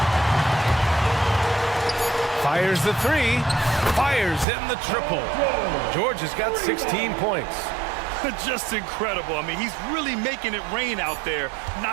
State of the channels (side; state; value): left; drops out; at 4.5 s